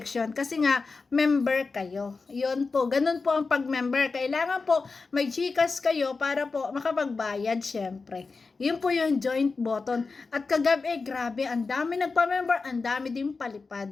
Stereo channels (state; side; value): quieter; right; 4.3 dB